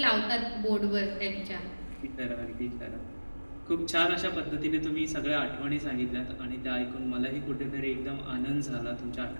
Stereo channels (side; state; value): both; inverted; correlation -1.00